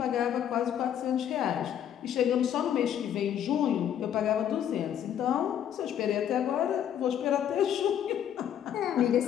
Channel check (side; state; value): right; quieter; 9.8 dB